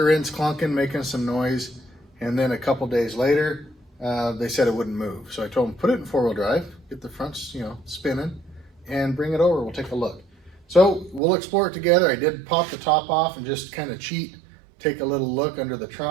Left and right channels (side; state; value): left; drops out; at 11.2 s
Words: end's clunking, making some noise. And then a couple days later, they said it wouldn't move. So I told him, put it in four-wheel drive, get the fronts, spinning, and bring it over. We'll take a look. So we'll explore it together. I did pop the top off and just kind of cheat, take a little look under the